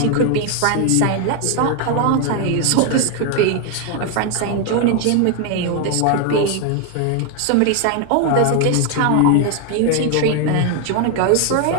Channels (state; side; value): different; both; correlation 0.01